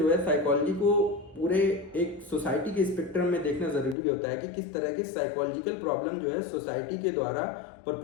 है साइकोलॉजी को पूरे एक सोसाइटी के स्पेक्ट्रम में देखना ज़रूरी होता है कि किस तरह की साइकोलॉजिकल प्रॉब्लम जो है सोसाइटी के द्वारा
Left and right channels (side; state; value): right; drops out; at 4.0 s